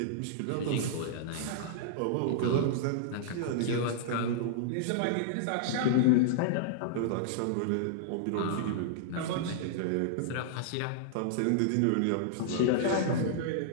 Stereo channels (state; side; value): different; both; correlation -0.01